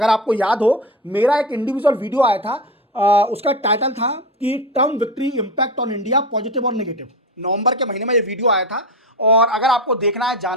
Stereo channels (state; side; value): normal; both; correlation 0.22